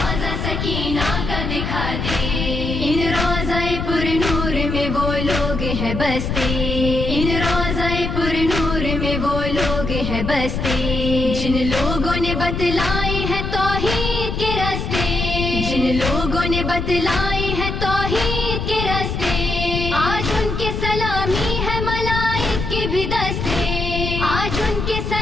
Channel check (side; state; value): left; noise; rumble, 3 dB below the sound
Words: سکینہ کا دکھا دے۔ ان روضہ پر نور میں وہ لوگ ہیں بستے، ان روضہ پر نور میں وہ لوگ ہیں بستے، جن لوگوں نے بتلائے ہیں توحید کے راستے، جن لوگوں نے بتلائے ہیں توحید کے راستے، آج ان کے سلامی ہے ملائک کے بھی دستے، آج ان کے